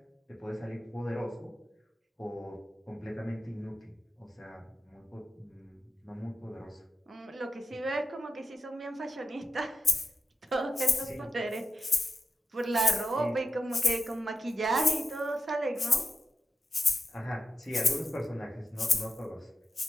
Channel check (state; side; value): normal; both; correlation 0.89